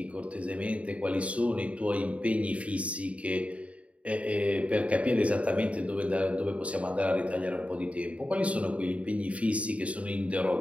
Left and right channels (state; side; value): late; left; 0.065 ms